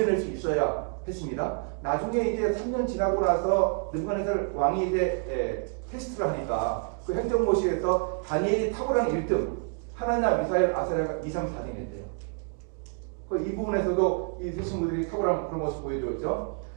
수 있어야 했습니다. 나중에 이제 3년 지나고 나서 느부갓네살 왕이 이제 테스트를 하니까 그 행정고시에서 다니엘이 탁월한 1등, 하나냐, 미사엘, 아사랴가 2, 3, 4등 했대요. 이 부분에서도 이 세 친구들이 탁월한 그런 모습 보여줬죠.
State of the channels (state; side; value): quieter; left; 39.7 dB